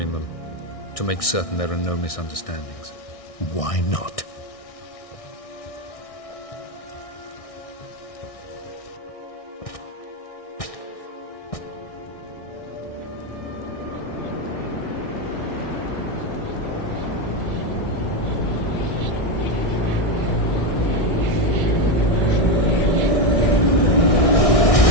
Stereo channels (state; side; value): late; right; 1.6 ms